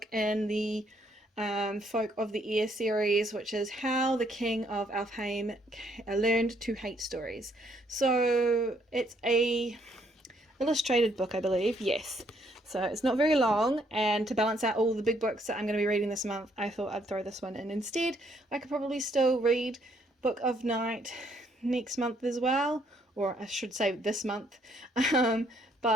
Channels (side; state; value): both; normal; correlation 0.69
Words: in the Folk of the Air series, which is How the King of Alfheim Learned to Hate Stories. So it's a illustrated book, I believe. Yes, so it's not very long, and to balance out all the big books that I'm going to be reading this month, I thought I'd throw this one in instead. I could probably still read Book of Night next month as well, or I should say this month,